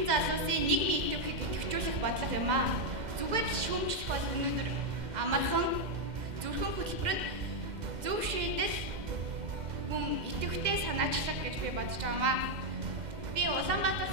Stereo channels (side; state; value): left; late; 2.0 ms